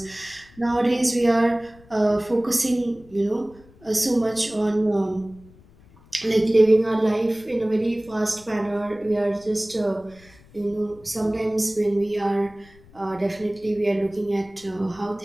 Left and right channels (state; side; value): noise; left; rumble, 25 dB below the sound